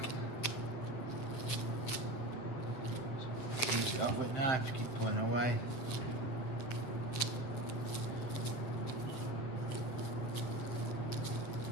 Finish it off with a knife, keep pulling away.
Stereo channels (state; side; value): late; right; 7.9 ms